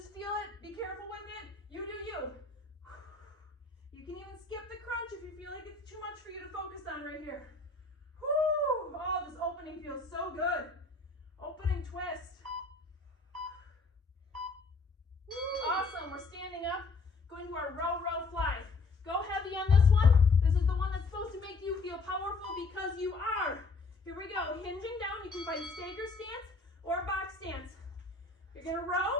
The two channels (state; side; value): quieter; right; 3.7 dB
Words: feel it. Be careful with it. You do you. You can even skip the crunch if you feel like it's too much for you to focus on right here. Whoo! Oh, this opening feels so good. Opening twist. Woo. Awesome. We're standing up, going to our row, row, fly. Go heavy on this one. This is the one that's supposed to make you feel powerful because you are. Here we go. Hinging down. You can find stagger stance or box stance. You're going to